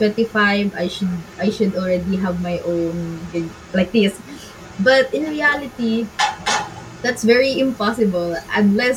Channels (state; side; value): identical; both; correlation 1.00